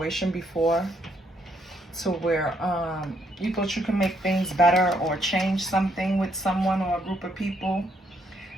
before to where you thought you can make things better or change something with someone or a group of people,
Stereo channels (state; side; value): normal; both; correlation 0.73